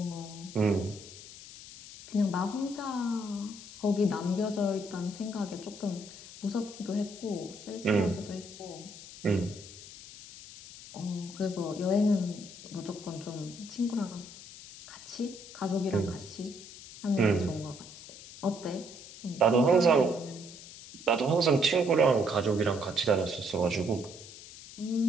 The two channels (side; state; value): left; noise; hiss, 16 dB below the sound